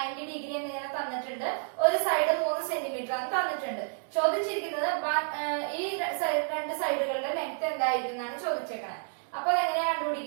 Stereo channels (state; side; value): silent; left; digital silence